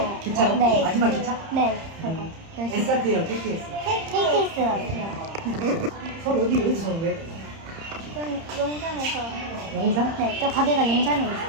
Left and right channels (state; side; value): late; left; 30 ms